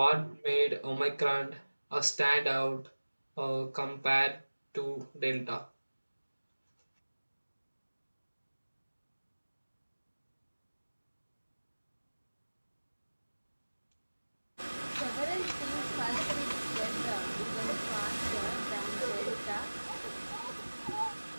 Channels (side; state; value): both; inverted; correlation -1.00